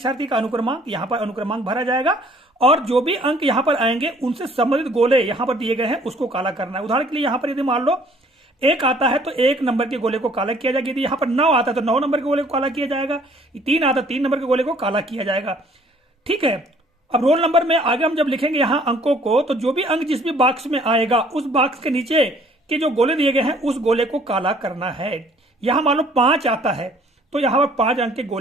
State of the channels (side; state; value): both; normal; correlation 0.58